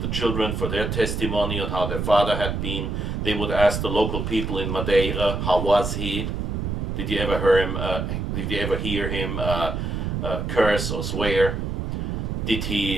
children for their testimony on how their father had been. They would ask the local people in Madeira, how was he? Did you ever hear him? Did you ever hear him curse or swear? Did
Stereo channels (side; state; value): right; noise; rumble, 2 dB below the sound